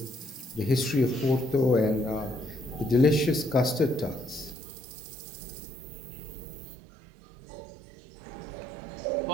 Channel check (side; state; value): left; drops out; at 4.5 s